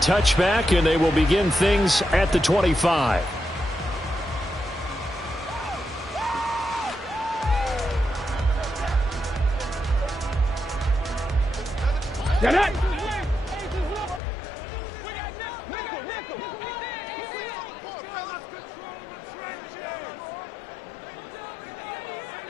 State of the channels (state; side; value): drops out; right; at 14.2 s